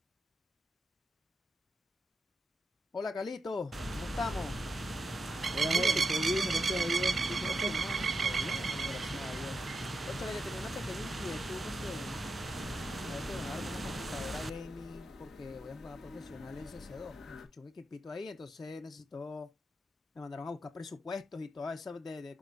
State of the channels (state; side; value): normal; both; correlation 0.85